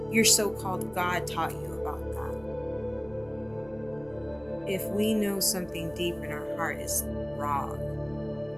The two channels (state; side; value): noise; right; rumble, 25 dB below the sound